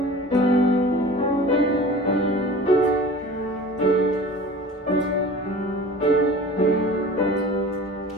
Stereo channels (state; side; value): normal; both; correlation 0.40